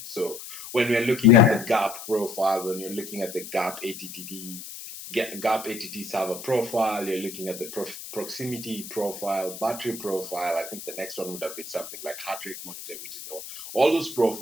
So when we're looking at the Yeah. GAP profile, when you're looking at the GAP ATT server profile, you're looking at the proximity profile, battery profile. I think the next one would have been something like heart rate monitor, which is all those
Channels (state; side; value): noise; left; hiss, 12 dB below the sound